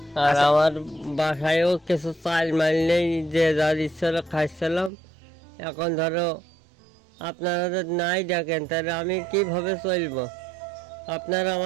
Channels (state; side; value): drops out; left; at 4.9 s